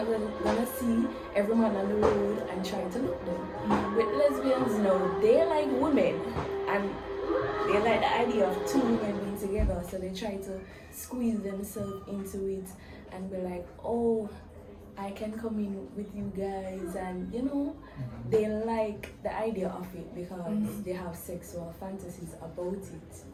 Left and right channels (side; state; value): both; identical; correlation 1.00